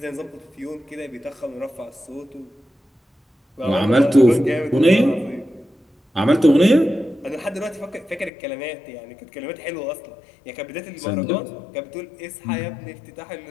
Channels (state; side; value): drops out; right; at 8.3 s